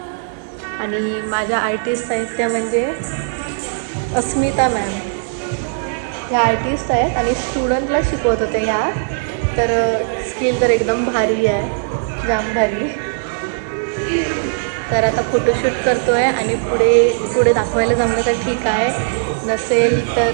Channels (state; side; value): silent; left; digital silence